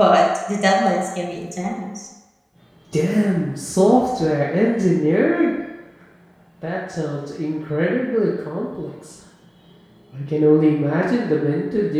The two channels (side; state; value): both; identical; correlation 1.00